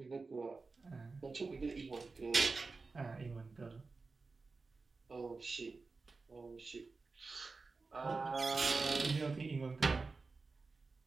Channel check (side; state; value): left; quieter; 4.0 dB